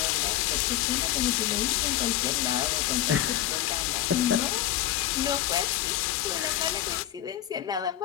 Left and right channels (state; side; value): quieter; right; 12.7 dB